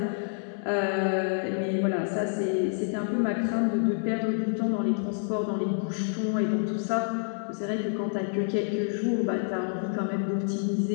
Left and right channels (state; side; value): silent; right; digital silence